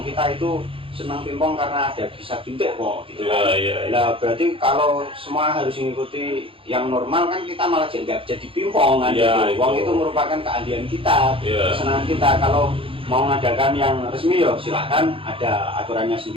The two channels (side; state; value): left; late; 0.26 ms